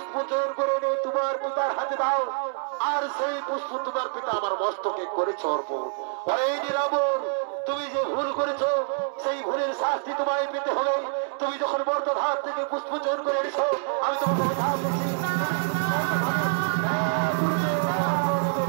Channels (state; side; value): silent; left; digital silence